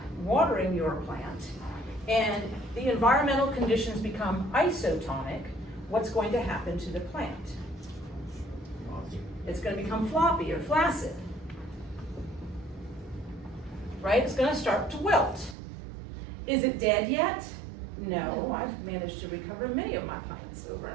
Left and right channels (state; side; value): drops out; left; at 15.6 s